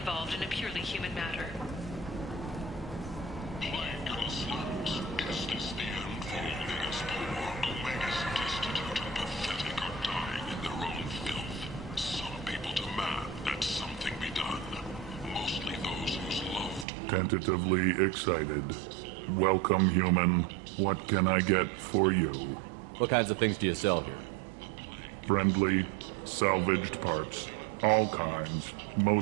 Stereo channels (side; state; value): left; drops out; at 16.9 s